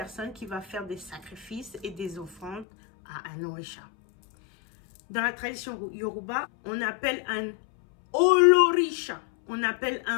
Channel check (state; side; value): drops out; right; at 2.7 s